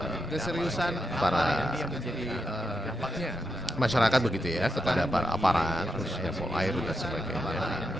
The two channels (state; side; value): normal; both; correlation 0.85